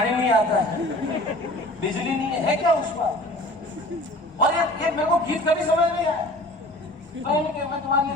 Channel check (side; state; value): both; normal; correlation 0.44